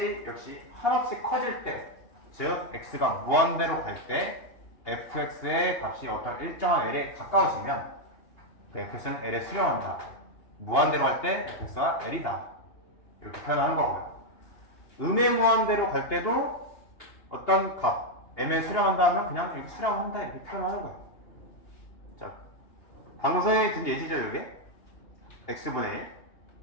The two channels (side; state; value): right; late; 2.9 ms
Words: 역시 한없이 커질 때, 즉 x가 무한대로 갈 때 fx의 값이 어떤 일정한 l에 가까워지면 그 fx는 l에 수렴한다. 무한대로 갈 때 fx가 l이다. 이렇게 표현하는 거고요. 음의 무한대로 갈 때도 어떤 값 m에 수렴한다 하면 그냥 이렇게 수렴한다 이렇게 표현하는 거예요. 자, 방금 선생님이 든 예시죠, 이게? x분의 1.